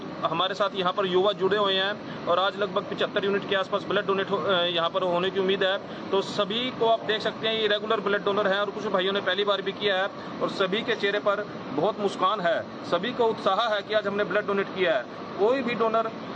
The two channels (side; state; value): both; identical; correlation 1.00